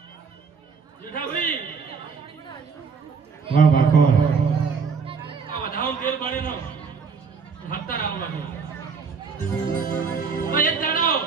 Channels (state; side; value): quieter; left; 5.3 dB